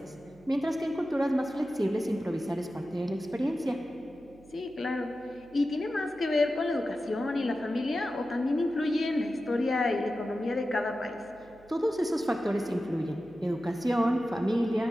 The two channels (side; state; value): right; noise; hum, 26 dB below the sound